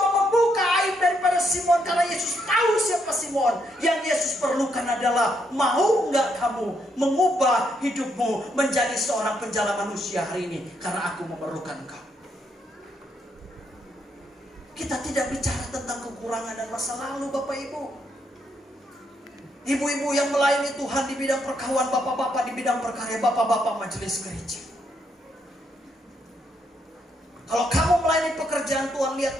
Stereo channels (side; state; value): both; normal; correlation 0.76